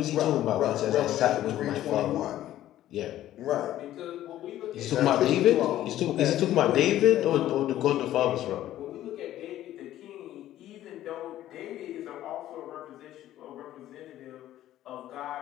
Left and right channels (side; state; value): right; quieter; 13.2 dB